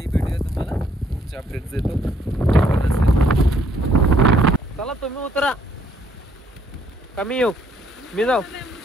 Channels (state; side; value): normal; both; correlation 0.67